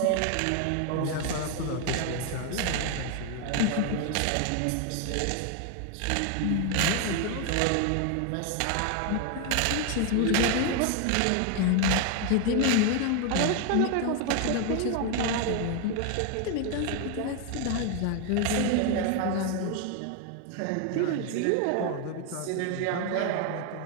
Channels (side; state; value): both; different; correlation 0.01